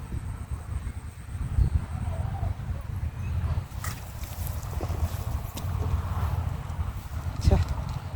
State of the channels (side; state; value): both; identical; correlation 1.00